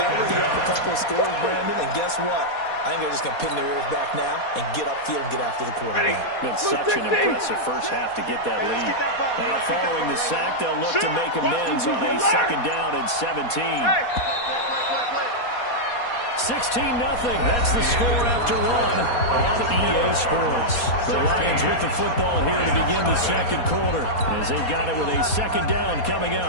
already up a couple of scores, Brandon, and guess what? I think they're just going to pin their ears back now and get upfield and get after the quarterback. Been such an impressive first half to get that lead. Now, following the sack, they'll look to make amends on a second down and 17. 16-0. That's the score after 1 on EA Sports. The Lions with the football here to begin the second quarter as they've got it with a second down coming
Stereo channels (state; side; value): late; right; 4.2 ms